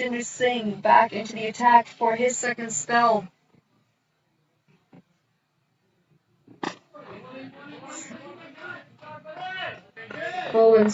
Singh back into the attack for his second spell. Bowling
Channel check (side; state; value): both; identical; correlation 1.00